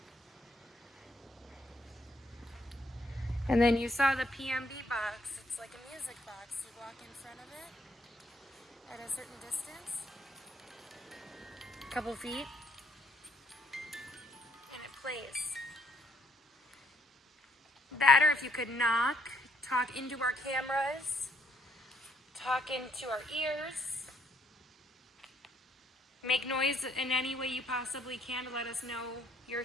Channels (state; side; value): normal; both; correlation 0.68